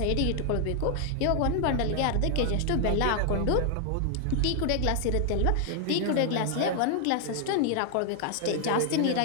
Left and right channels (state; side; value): different; both; correlation 0.00